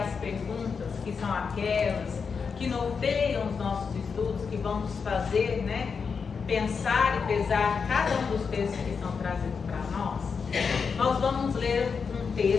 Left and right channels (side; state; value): right; quieter; 5.7 dB